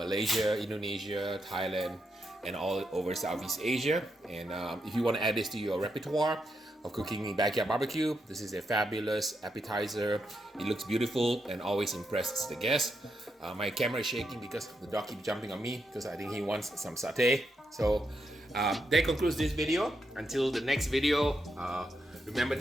Indonesia, Thailand, and all over Southeast Asia. And if you want to add this to your repertoire of cooking backyard barbecue, this is a fabulous appetizer. It looks beautiful and always impresses the guests. My camera is shaking because the dog keeps jumping on me because I think he wants some satay. So that concludes this video. Until the next video, remember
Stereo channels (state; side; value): normal; both; correlation 0.82